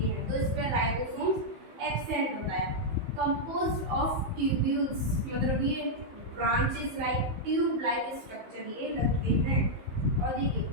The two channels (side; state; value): left; late; 15 ms